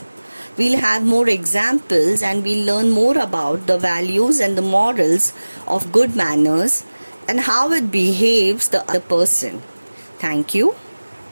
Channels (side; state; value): both; inverted; correlation -1.00